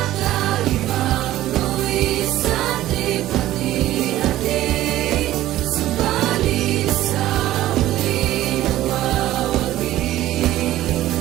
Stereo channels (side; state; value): left; quieter; 14.5 dB